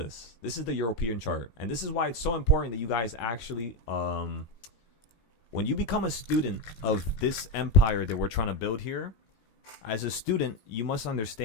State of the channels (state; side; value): late; right; 18 ms